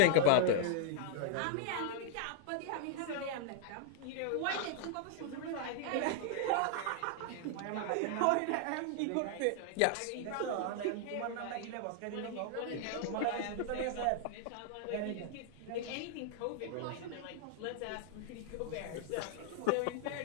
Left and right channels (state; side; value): different; both; correlation 0.00